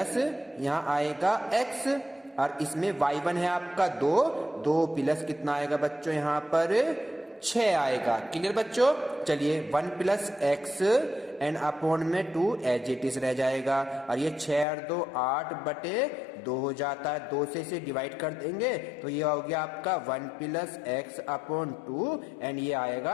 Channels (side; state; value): right; drops out; at 14.7 s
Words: यहाँ आएगा x और इसमें y1 है आपका 2 प्लस कितना आएगा बच्चों यहाँ पर 6 आएगा। क्लियर बच्चों। चलिए 1 प्लस x एंड अपॉन में 2 एज इट इज रह जाएगा और ये 6 और 2 8 बटे 2 हो जाता है। 2 से इसे डिवाइड कर देंगे तो ये हो गया आपका 1 प्लस x अपॉन 2 एंड ये